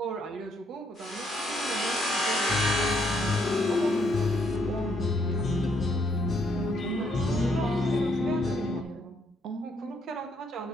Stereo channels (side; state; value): both; normal; correlation 0.72